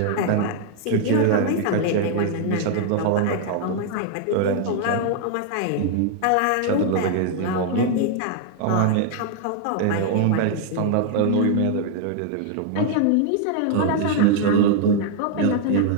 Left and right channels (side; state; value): both; different; correlation 0.00